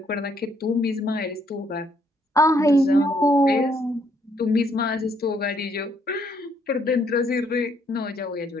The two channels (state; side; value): normal; both; correlation 0.70